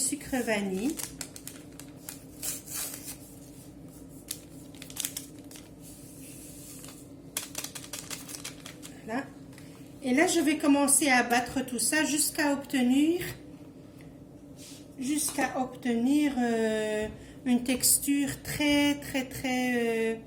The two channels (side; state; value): both; identical; correlation 1.00